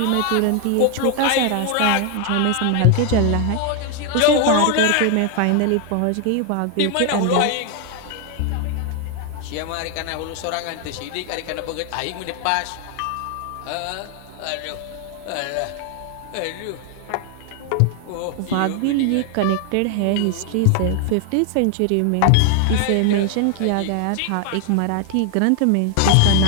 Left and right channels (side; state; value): both; different; correlation 0.00